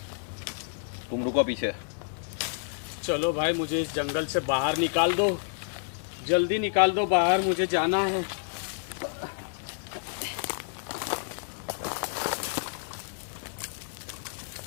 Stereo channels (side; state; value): right; silent; 58 dB below the other